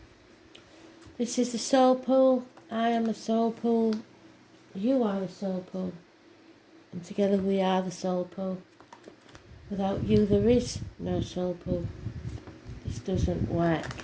This is the Soul Pool. I am the Soul Pool. You are the Soul Pool. And together we are the Soul Pool. Without you there is no Soul Pool. This doesn't work.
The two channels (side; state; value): both; identical; correlation 1.00